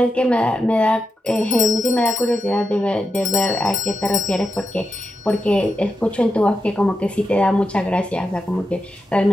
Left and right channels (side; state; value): both; normal; correlation 0.87